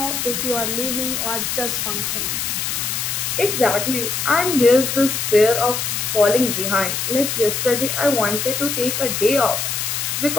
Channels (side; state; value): left; noise; hiss, 2 dB below the sound